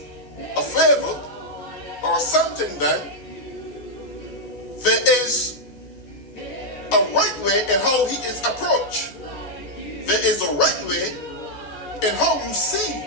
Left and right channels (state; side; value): late; right; 14 ms